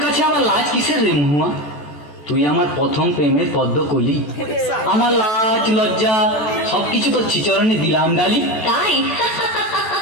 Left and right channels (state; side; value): late; right; 14 ms